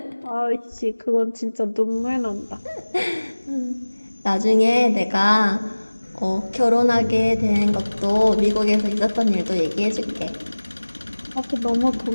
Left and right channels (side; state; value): both; inverted; correlation -1.00